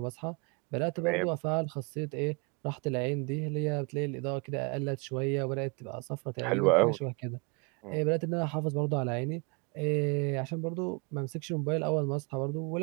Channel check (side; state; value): left; quieter; 31.8 dB